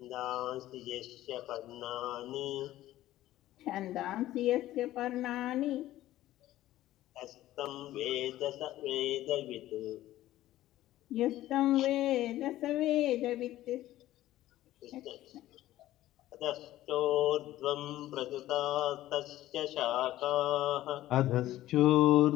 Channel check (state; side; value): quieter; right; 14.7 dB